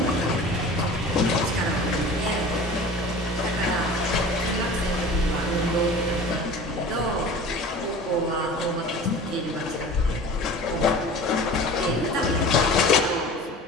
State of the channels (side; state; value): both; normal; correlation 0.39